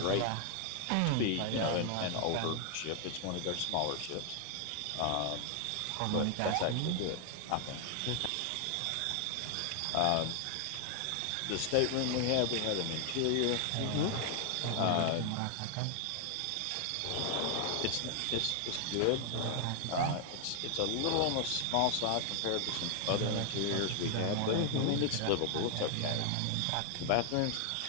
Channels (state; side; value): different; both; correlation 0.00